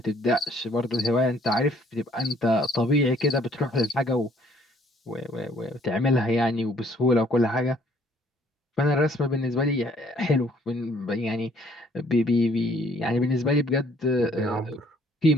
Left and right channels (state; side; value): normal; both; correlation 0.62